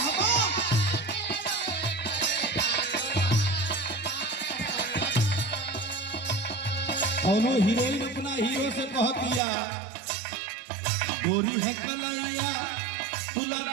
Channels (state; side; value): drops out; left; at 9.4 s